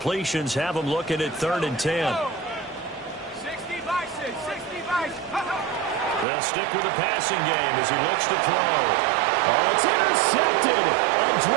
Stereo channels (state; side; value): drops out; left; at 6.2 s